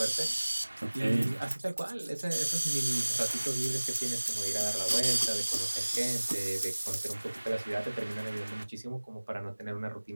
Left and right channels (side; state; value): both; inverted; correlation -1.00